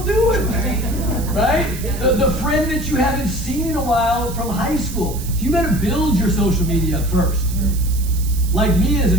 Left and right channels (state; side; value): noise; right; hiss, 13 dB below the sound